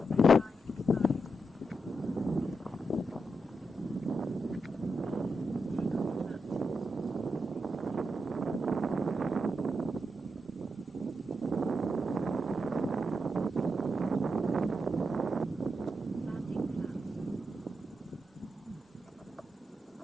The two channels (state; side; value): normal; both; correlation 0.85